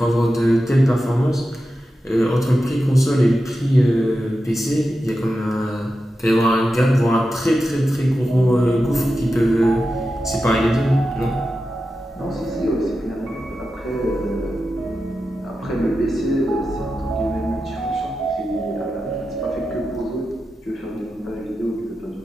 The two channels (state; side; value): normal; both; correlation 0.91